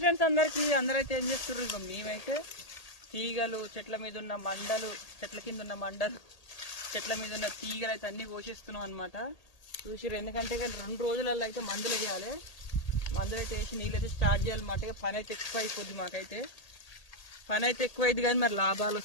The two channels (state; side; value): late; right; 1.8 ms